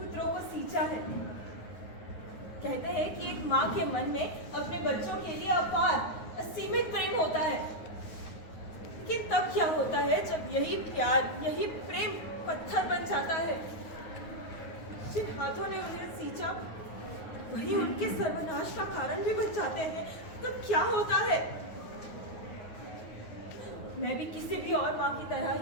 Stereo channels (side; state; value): right; late; 9.5 ms